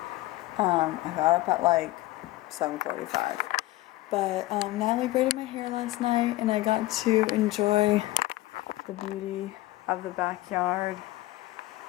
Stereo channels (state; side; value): quieter; right; 17.9 dB